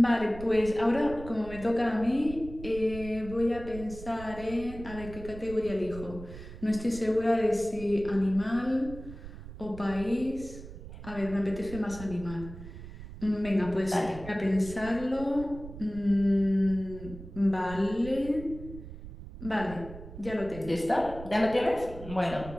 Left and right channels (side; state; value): right; noise; rumble, 13 dB below the sound